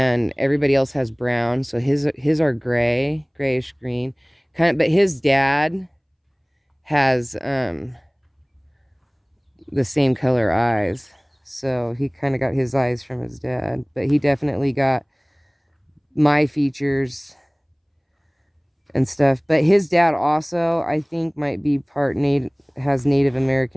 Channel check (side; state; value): both; identical; correlation 1.00